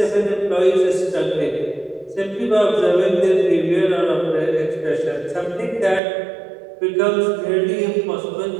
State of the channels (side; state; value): left; drops out; at 6.0 s